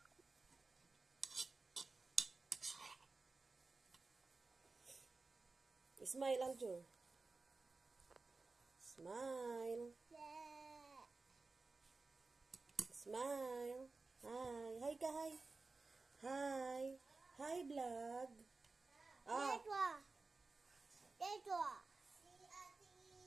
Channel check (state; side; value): quieter; left; 3.8 dB